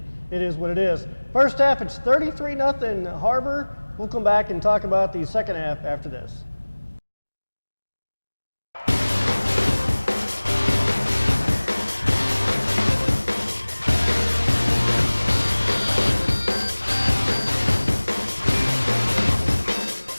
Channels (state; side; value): inverted; both; correlation -1.00